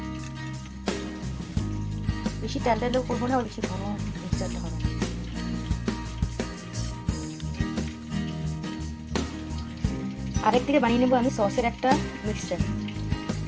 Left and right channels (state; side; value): identical; both; correlation 1.00